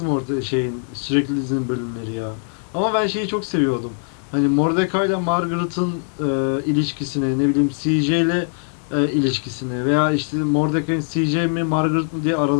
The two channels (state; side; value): silent; right; 61 dB below the other